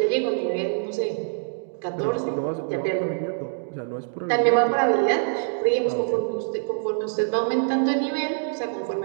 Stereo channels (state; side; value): silent; left; digital silence